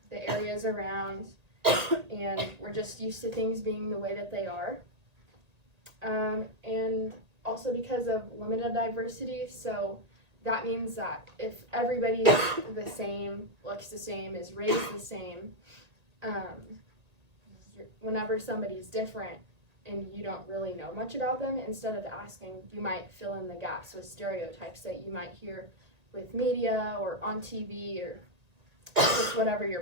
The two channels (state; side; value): late; left; 1.9 ms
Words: the areas around, and we're just used to things being the way that they are. And also because of limited diversity, so that means that if everybody's the same, looks the same, is raised the same, whenever somebody's different and you don't really know much about them, instead of asking, you might fill in the gaps with stereotypes that you might hear with media or on TV or just whatever your